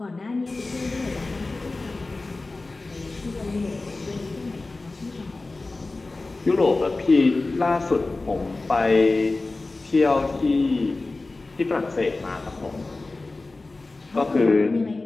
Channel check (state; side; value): quieter; right; 3.3 dB